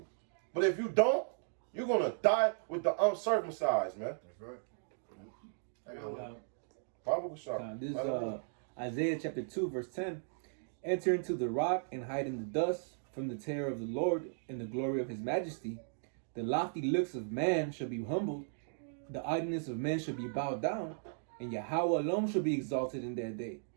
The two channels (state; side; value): silent; left; digital silence